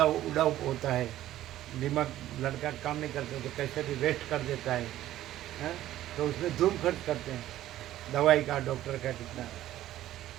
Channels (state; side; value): quieter; left; 13.7 dB